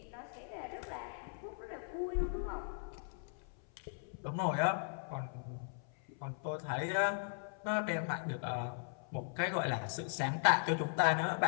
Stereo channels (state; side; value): silent; right; 52 dB below the other